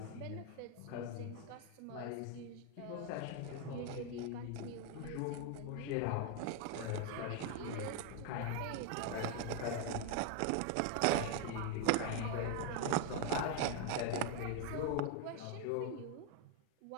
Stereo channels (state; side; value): different; both; correlation 0.01